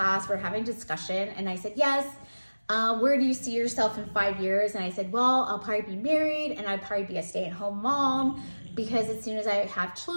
we're having discussion, and I said, yes, where do you see yourself in 5 years? And I said, well, I'll probably be married, and I'd probably be a stay-at-home mom, because as soon as I have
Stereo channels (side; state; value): both; inverted; correlation -1.00